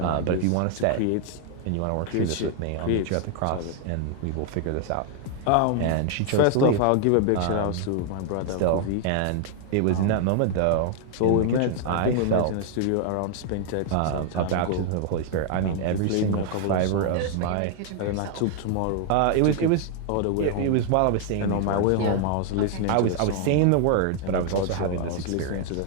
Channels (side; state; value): both; different; correlation 0.00